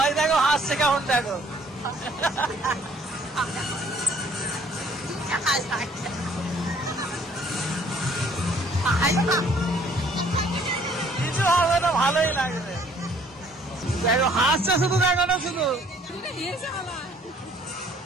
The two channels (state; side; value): normal; both; correlation 0.60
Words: দেখো হাসছে কেমন, দেখো কিছু হবে না, ভালোই লাগবে। দেখো হাসছে শুধু, দেখো না শুধু।